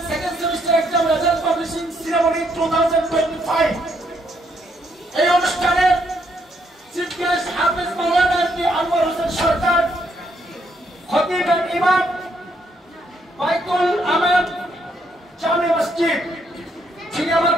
second semester exam result publishing ceremony 2025 এই অনুষ্ঠানে চিফ গেস্ট হাফেজ মাওলানা আনোয়ার হোসেন সরকার, খতিব এন্ড ইমাম বাইতুল আমান জামে মসজিদ, যিনি আমার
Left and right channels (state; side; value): normal; both; correlation 0.73